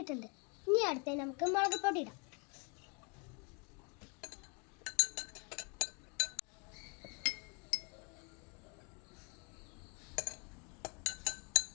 ഇനി അടുത്ത് നമുക്ക് മുളക് പൊടി ഇടാം.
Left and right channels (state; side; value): quieter; right; 34.6 dB